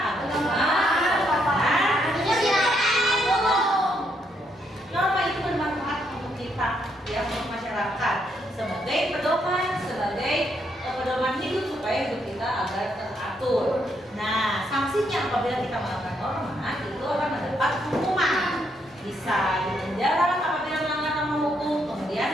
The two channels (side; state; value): both; normal; correlation 0.75